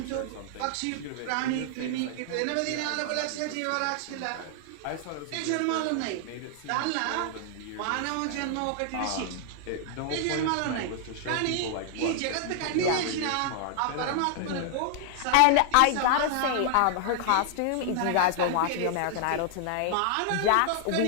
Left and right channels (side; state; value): both; different; correlation 0.00